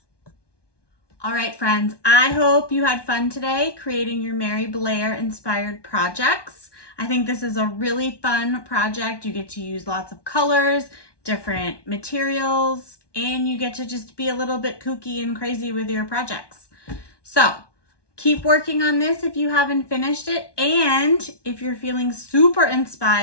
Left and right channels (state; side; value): late; right; 1.2 ms